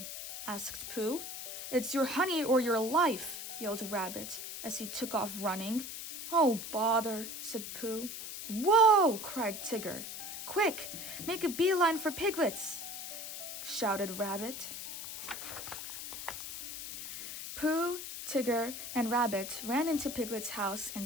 asked Pooh. "It's your honey or your life," yelled Rabbit as he took off running. "Oh, bother," said Pooh. "Whoa!" cried Tigger. "Quick, make a beeline for Piglet's," shouted Rabbit. Pooh, Tigger, and Rabbit ran into Piglet's house and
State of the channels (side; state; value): left; noise; hiss, 8 dB below the sound